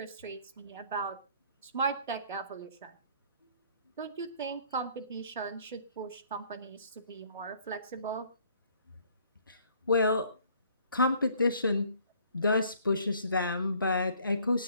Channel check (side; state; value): both; inverted; correlation -0.60